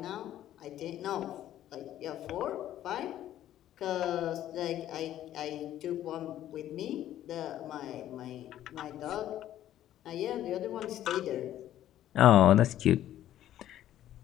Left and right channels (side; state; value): right; quieter; 12.4 dB